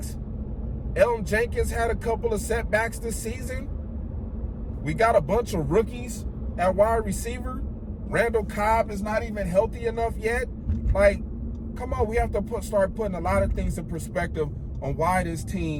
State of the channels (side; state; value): both; identical; correlation 1.00